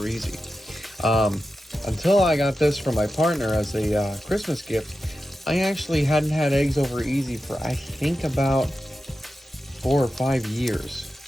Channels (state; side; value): normal; both; correlation 0.91